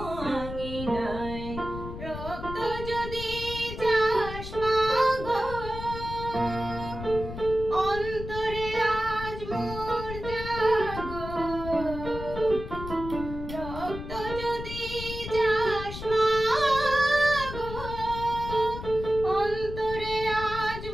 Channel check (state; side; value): noise; left; rumble, 9 dB below the sound